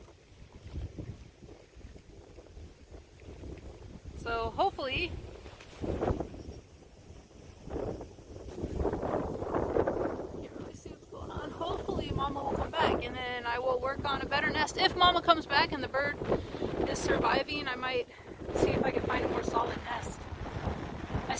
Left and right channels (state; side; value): identical; both; correlation 1.00